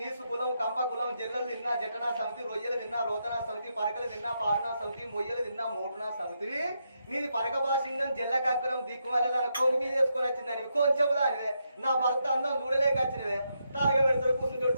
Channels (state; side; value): inverted; both; correlation -0.81